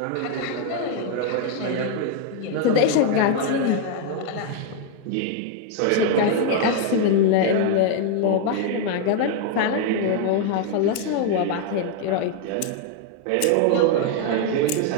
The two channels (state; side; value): different; both; correlation 0.00